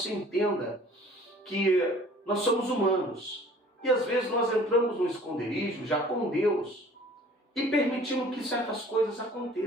entenda que nós somos humanos, e às vezes nós entramos no esconderijo já com Deus, e permitimos que certas coisas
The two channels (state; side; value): normal; both; correlation 0.50